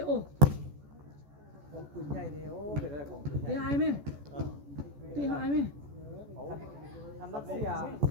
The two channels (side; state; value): left; late; 14 ms